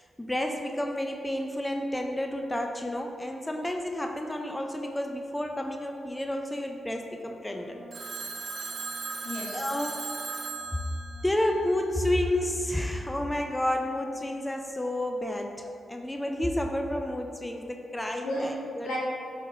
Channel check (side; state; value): both; normal; correlation 0.91